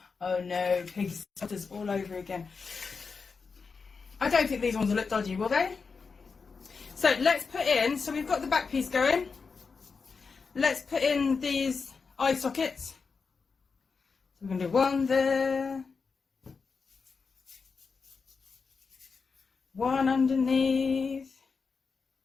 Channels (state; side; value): quieter; right; 5.0 dB